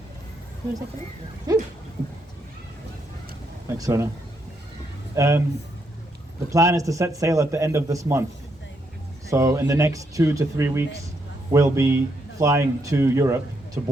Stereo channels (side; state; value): both; normal; correlation 0.77